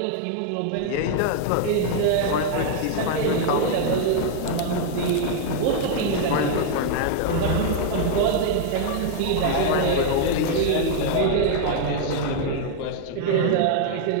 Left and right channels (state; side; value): different; both; correlation 0.00